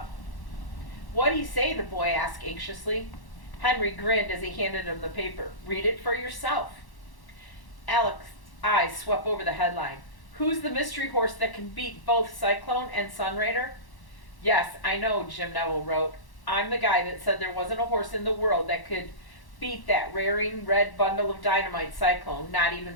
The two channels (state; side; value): late; right; 1.1 ms